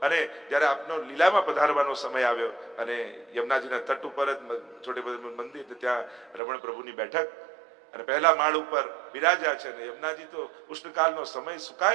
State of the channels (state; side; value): drops out; left; at 6.4 s